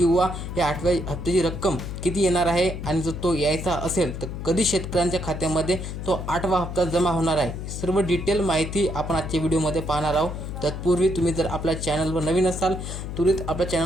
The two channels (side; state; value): left; noise; hum, 7 dB below the sound